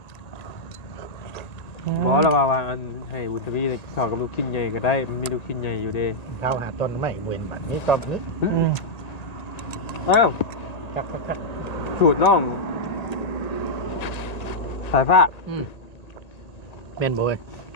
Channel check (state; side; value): late; right; 1.9 ms